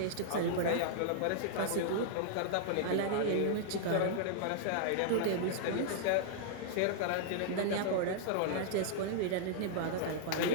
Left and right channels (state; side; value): different; both; correlation -0.01